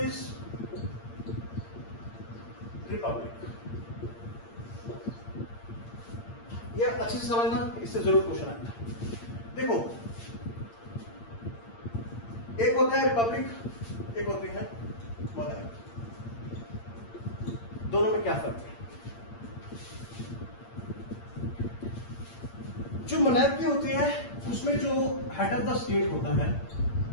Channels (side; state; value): right; late; 8.7 ms